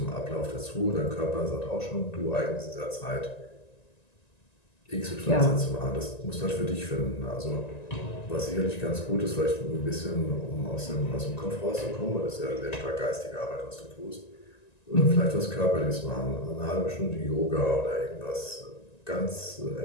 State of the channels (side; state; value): right; late; 1.9 ms